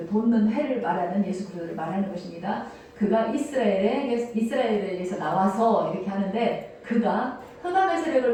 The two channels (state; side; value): identical; both; correlation 1.00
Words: 돋는 해를 말하는 예수 그리스도를 말하는 것입니다. 그가 이스라엘에게서 나와서 이렇게 하는데 그가 흑암의